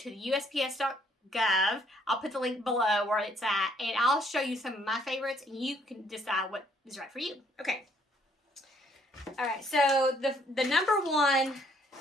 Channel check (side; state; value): both; normal; correlation 0.66